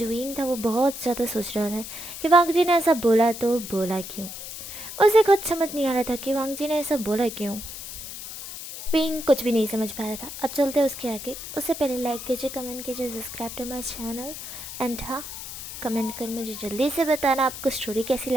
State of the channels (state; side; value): noise; left; hiss, 10 dB below the sound